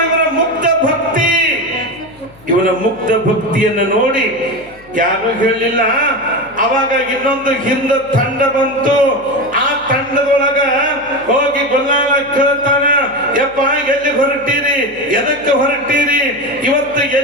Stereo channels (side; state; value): left; noise; hum, 26 dB below the sound